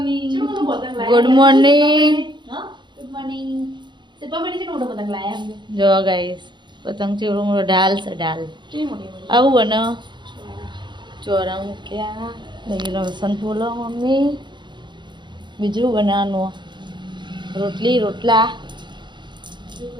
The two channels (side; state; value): left; late; 0.22 ms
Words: Good morning. Good morning. સિપા બેટી છે મોટો પતંગ લાયા અમને. જો ગાઈસ, પતંગ ચેવડો મોટો ઢાલ છે, ઢાલ કેવી મોટી આવું બને. ચોરા મૂક્યા, દહીં લસણ ફૂલો મમ્મી. બીજું બનાવવાનું રોટલી રોટલા,